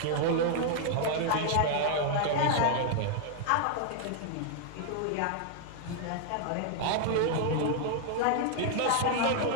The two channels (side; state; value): both; different; correlation 0.00